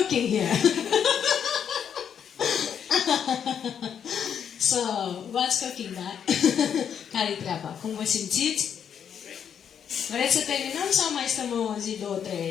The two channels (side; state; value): right; quieter; 8.1 dB